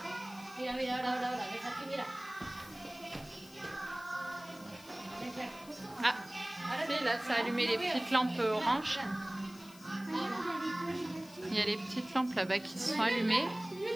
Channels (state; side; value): noise; left; hiss, 21 dB below the sound